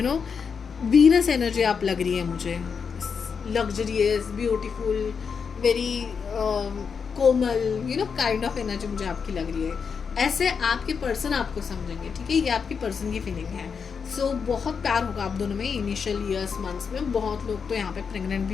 वीनस एनर्जी आप लग रही है मुझे, luxurious, beautiful, very Komal, kind of energy मुझे आपकी लग रही है। ऐसे आपके पर्सन आपको समझेंगे, ठीक है। ये आपकी पर्सन की फीलिंग है। सो बहुत प्यार होगा आप दोनों में इनिशियल ईयर्स, मंथ्स में। बहुत लोग तो यहाँ पे प्रेग्नेंट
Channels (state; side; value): quieter; right; 6.1 dB